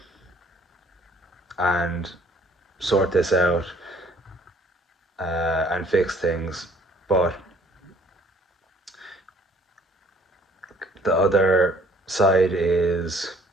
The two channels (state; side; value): normal; both; correlation 0.58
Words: and sort this out and fix things, but the other side is